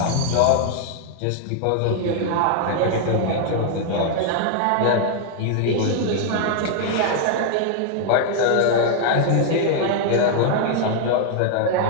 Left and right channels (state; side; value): different; both; correlation 0.00